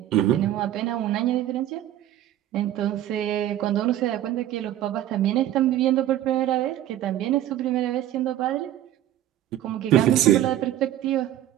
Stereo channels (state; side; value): quieter; left; 12.5 dB